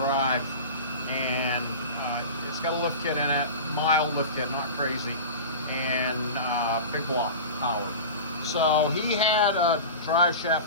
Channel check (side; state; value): both; inverted; correlation -0.31